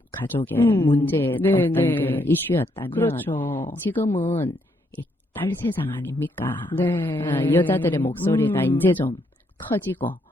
가족의 문제의 네, 어떤 네. 그 이슈였다면 그렇죠. 지금은 이 딸 세상 아닙니까? 네. 여자들의 목소리가 이제 좀 커지고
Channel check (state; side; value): normal; both; correlation 0.74